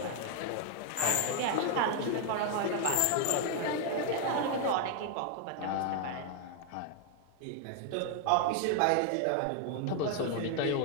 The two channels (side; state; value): both; different; correlation 0.00